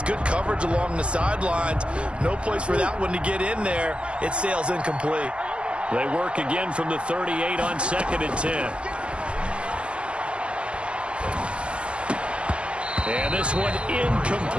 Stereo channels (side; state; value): left; late; 0.058 ms